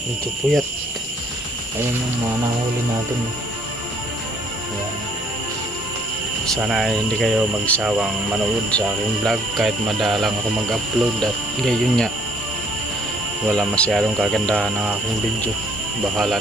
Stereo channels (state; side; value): normal; both; correlation 0.61